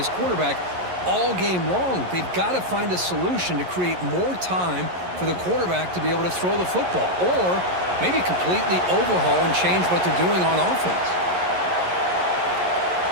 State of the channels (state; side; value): late; left; 11 ms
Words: quarterback all game long. They've got to find a solution to create more time for the quarterback to be able to throw the football, or maybe completely overhaul and change what they're doing on offense.